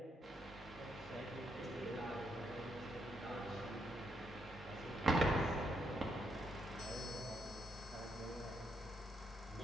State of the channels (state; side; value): normal; both; correlation 0.77